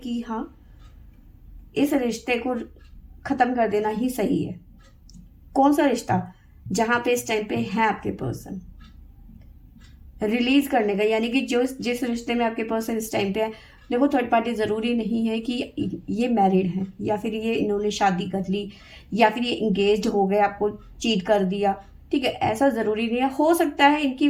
हाँ, इस रिश्ते को खत्म कर देना ही सही है। कौन सा रिश्ता? जहां पे इस टाइम पे है आपके पर्सन, रिलीज करने का, यानी कि जो जिस रिश्ते में आपके पर्सन इस टाइम पे है। देखो, थर्ड पार्टी जरूरी नहीं है कि ये मैरिड है, या फिर ये इन्होंने शादी कर ली, या फिर ये इंगेज हो गए, आपको चीट कर दिया, ठीक है। ऐसा जरूरी नहीं है। हो सकता है इनकी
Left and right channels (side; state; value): both; identical; correlation 1.00